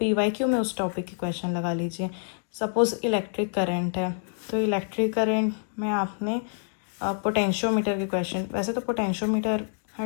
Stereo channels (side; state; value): right; silent; digital silence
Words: PYQ में उस टॉपिक के क्वेश्चन लगा लीजिए। सपोज़ इलेक्ट्रिक करंट है, तो इलेक्ट्रिक करंट में आपने पोटेंशियोमीटर के क्वेश्चन, वैसे तो पोटेंशियोमीटर